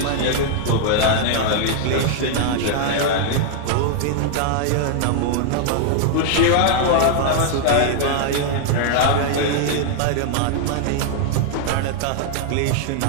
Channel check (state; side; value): different; both; correlation 0.00